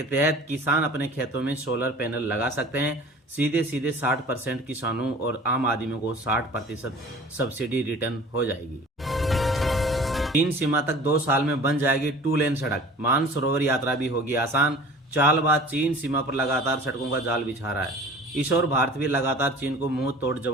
तहत किसान अपने खेतों में सोलर पैनल लगा सकते हैं। सीधे 60% किसानों और आम आदमियों को 60% सब्सिडी रिटर्न हो जाएगी। चीन सीमा तक 2 साल में बन जाएगी 2 लेन सड़क। मानसरोवर यात्रा भी होगी आसान। चालबाज चीन सीमा पर लगातार सड़कों का जाल बिछा रहा है। इस ओर भारत भी लगातार चीन को मुंह तोड़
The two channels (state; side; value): normal; both; correlation 0.44